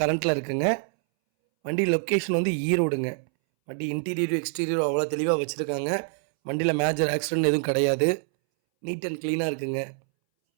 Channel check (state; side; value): silent; left; 61 dB below the other